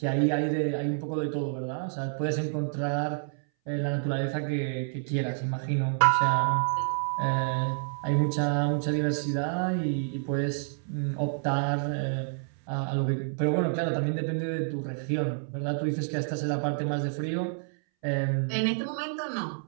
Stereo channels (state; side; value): silent; left; 59 dB below the other